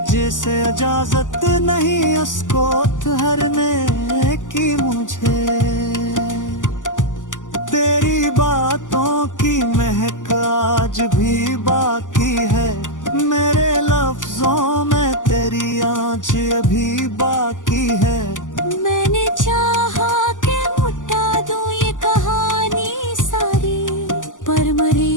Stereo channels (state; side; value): late; right; 0.87 ms